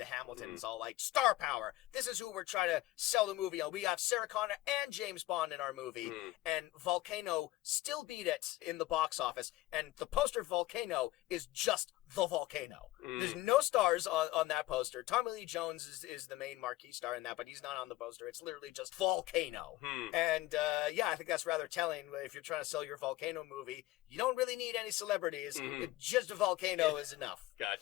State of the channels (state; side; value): quieter; right; 17.6 dB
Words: Hamilton. It's all like, star power. This is who we're trying to sell the movie on. We got Sarah Connor and James Bond in our movie. And Volcano still beat it in the box office. And the poster Volcano is just the volcano. There's no stars on that poster. Tommy Lee Jones is the main marquee star in that, but he's not on the poster. It's literally just Volcano. And I think that's rather telling. If you're trying to sell your Volcano movie, you don't really need any celebrities. Just a Volcano is enough.